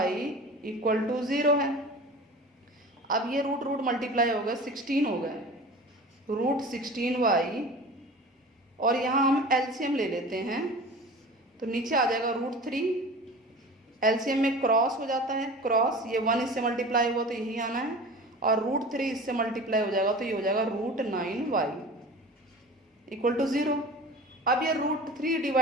equal to 0 है। अब ये रूट रूट मल्टीप्लाई हो गया, 16 हो गए, रूट 16y, और यहाँ हम एलसीएम ले लेते हैं, तो नीचे आ जाएगा रूट 3, एलसीएम में क्रॉस हो जाता है, क्रॉस, ये 1 इससे मल्टीप्लाई हुआ तो यही आना है, और रूट 3 इससे मल्टीप्लाई हो जाएगा तो ये हो जाएगा रूट 9y इक्वल टू 0। अब ये रूट 3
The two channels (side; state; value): both; normal; correlation 0.37